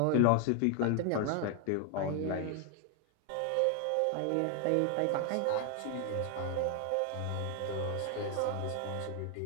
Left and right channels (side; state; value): both; different; correlation 0.00